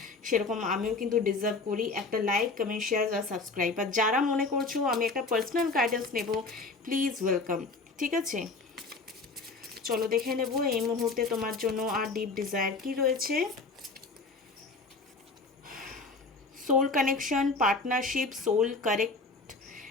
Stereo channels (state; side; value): quieter; right; 3.8 dB